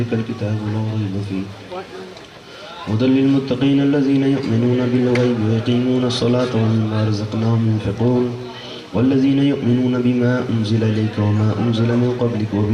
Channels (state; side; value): identical; both; correlation 1.00